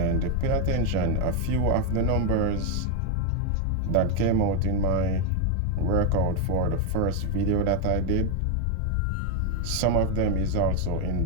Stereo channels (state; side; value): different; both; correlation 0.01